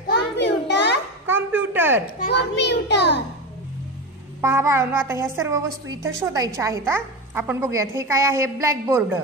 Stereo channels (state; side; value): normal; both; correlation 0.20